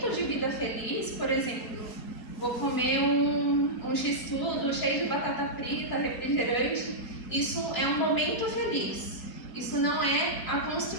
de vida feliz, por exemplo, vou comer um x-tudo cheio de batata frita, refrigerante, isso é um momento feliz. Isso não é a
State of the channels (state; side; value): late; right; 3.9 ms